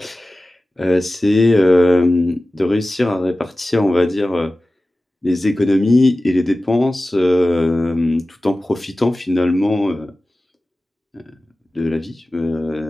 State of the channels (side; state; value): both; normal; correlation 0.96